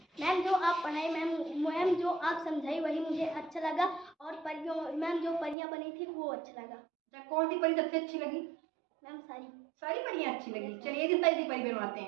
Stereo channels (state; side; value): drops out; left; at 5.6 s